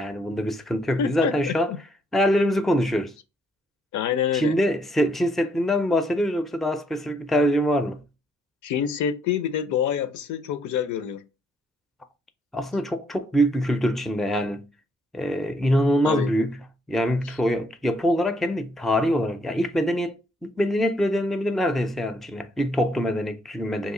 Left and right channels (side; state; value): both; normal; correlation 0.70